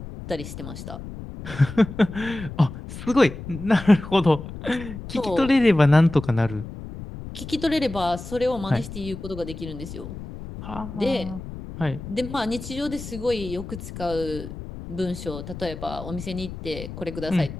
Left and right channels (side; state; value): left; noise; rumble, 11 dB below the sound